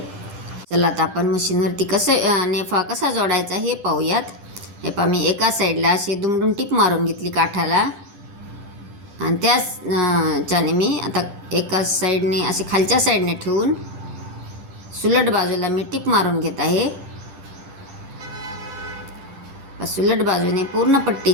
चला आता आपण मशीनवरती नेफा कसा जोडायचा हे पाहूयात. हे पहा, मी एका साईडला अशी दुमडून टिप मारून घेतली काठाला आणि त्याच्याने मी आता एका साईडने असे खालच्या साईडने ठेवून सुलट बाजूला मी टिप मारून घेत आहे. सुलट बाजूने पूर्ण पट्टी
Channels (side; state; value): left; late; 10 ms